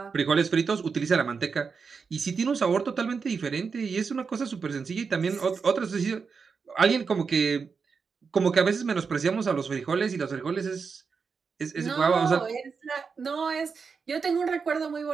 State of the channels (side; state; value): left; quieter; 5.4 dB